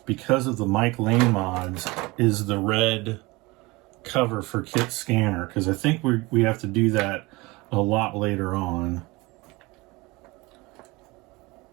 because of the Mike Lane mods is the red cover for KITT scanner, because I think we have to do that a lot later on.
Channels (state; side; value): quieter; left; 23.3 dB